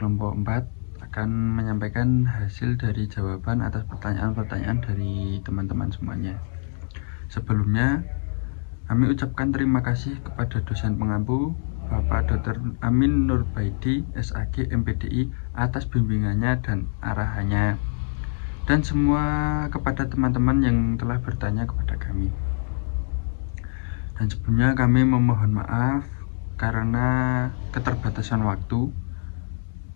4 akan menyampaikan hasil dari jawaban atas pertanyaan-pertanyaan dari teman-teman semuanya. Sebelumnya, kami ucapkan terima kasih kepada dosen pengampu Bapak Dr. Amin Nurbaidi, SAG MPDI atas bimbingannya dan arahannya, dan semua kepada teman-teman yang telah bertanya kepada kami. Dan sebelumnya kami memohon maaf karena keterbatasan waktu,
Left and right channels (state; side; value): silent; right; digital silence